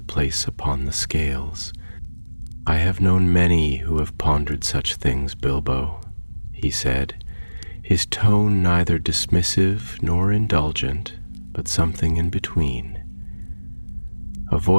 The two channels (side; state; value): both; inverted; correlation -1.00